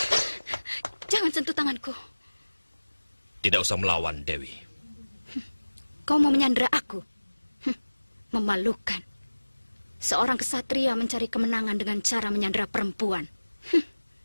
Jangan sentuh tanganku. Tidak usah melawan, Dewi. Kau mau menyandera aku? Memalukan. Seorang kesatria mencari kemenangan dengan cara menyandera perempuan.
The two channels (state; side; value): inverted; both; correlation -1.00